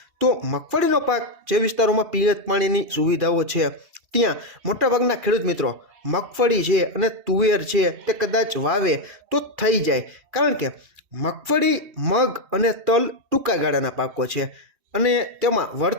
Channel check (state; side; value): late; left; 2.7 ms